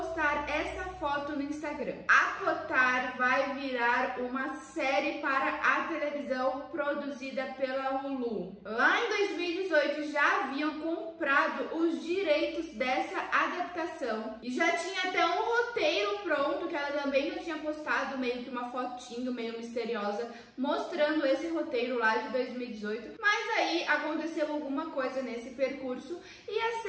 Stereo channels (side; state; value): both; identical; correlation 1.00